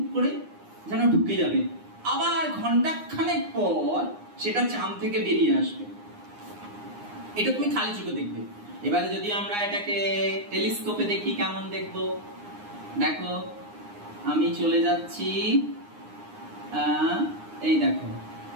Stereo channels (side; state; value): left; late; 9.7 ms